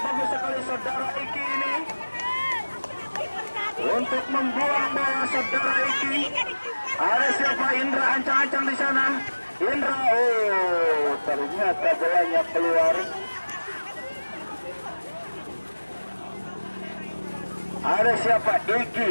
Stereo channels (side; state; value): both; inverted; correlation -1.00